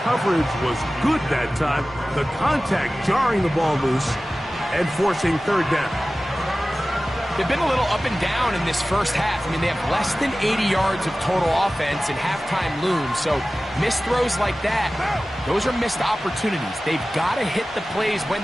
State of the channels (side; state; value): both; normal; correlation 0.96